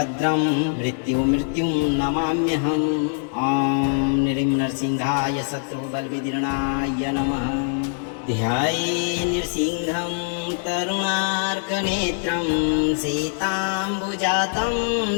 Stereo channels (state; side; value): silent; right; 63 dB below the other